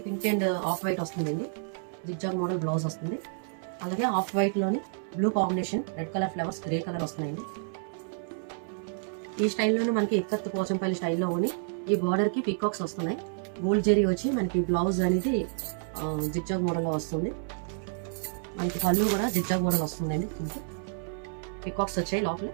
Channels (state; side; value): silent; left; 58 dB below the other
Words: పింక్ అండ్ ఆఫ్ వైట్ వస్తుందండి. జిగ్జాగ్ మోడల్ బ్లౌజ్ వస్తుంది. అలాగే ఆఫ్ వైట్ లోని blue combination, red colour flowers, grey colour వస్తున్నాయండి. ఈ స్టైల్లోనే మనకి ఇక్కత్ పోచంపల్లి స్టైల్లో ఉండి ఈ బార్డర్ కి పికాక్స్ వస్తున్నాయి. గోల్డ్ జెరీ వచ్చి మనకి బ్లౌజ్ అనేది జిగ్జాగ్ మోడల్ లో వస్తుంది. మనకి పళ్ళు కూడా జిగ్జాగ్ మోడల్ వస్తుందండి. పికాక్స్ వచ్చాయి లోపల.